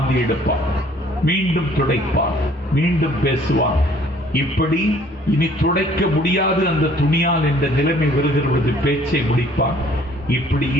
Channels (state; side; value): normal; both; correlation 0.58